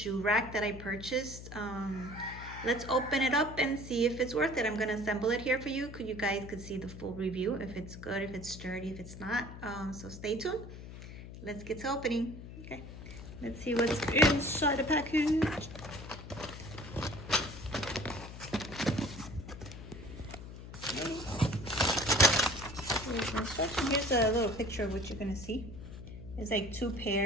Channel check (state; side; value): noise; left; hum, 12 dB below the sound